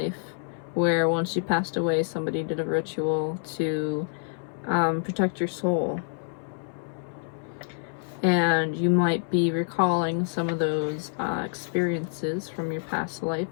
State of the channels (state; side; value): silent; right; 60 dB below the other